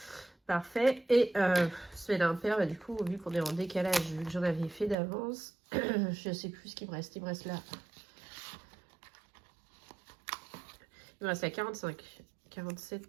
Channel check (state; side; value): drops out; left; at 5.0 s